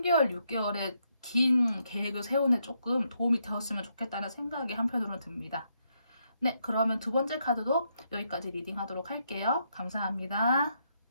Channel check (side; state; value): both; inverted; correlation -0.77